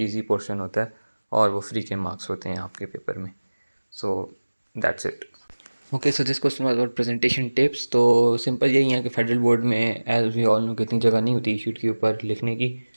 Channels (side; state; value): both; inverted; correlation -1.00